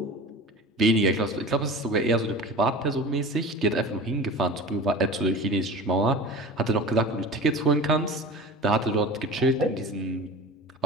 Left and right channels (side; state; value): both; normal; correlation 0.35